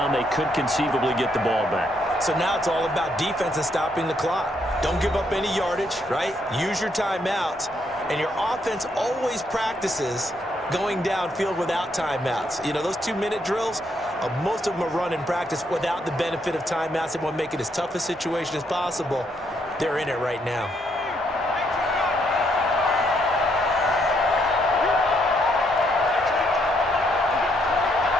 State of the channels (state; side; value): normal; both; correlation 0.74